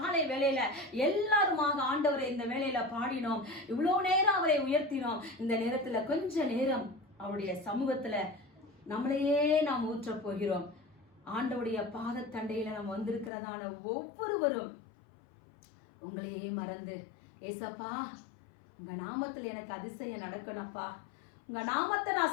வேளையில எல்லாருமாக ஆண்டவரை இந்த வேளையில பாடினோம், இவ்வளவு நேரம் அவரை உயர்த்தினோம். இந்த நேரத்துல கொஞ்ச நேரம் அவருடைய சமூகத்துல நம்மளையே நாம் ஊற்ற போகிறோம். ஆண்டவருடைய பாதத்தண்டையில நாம் வந்திருக்கிறதான ஒவ்வொருவரும் உங்களையே மறந்து, ஏசப்பா உங்க நாமத்துல எனக்கு அதிசயம் நடக்கணும்ப்பா, உங்க நாமத்தை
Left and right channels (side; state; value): right; drops out; at 13.3 s